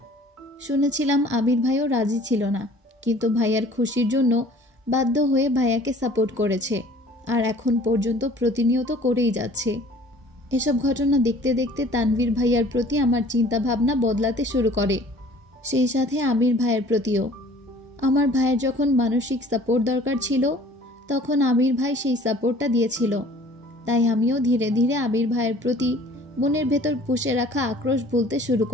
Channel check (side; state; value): both; normal; correlation 0.51